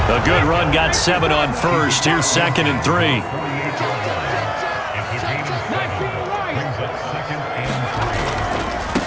A good run, got 7 on first. Here's 2nd and 3.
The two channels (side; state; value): both; identical; correlation 1.00